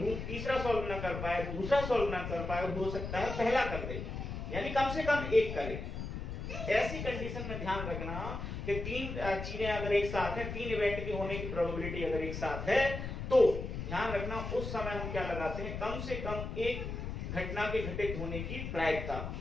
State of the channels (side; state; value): left; noise; rumble, 5 dB below the sound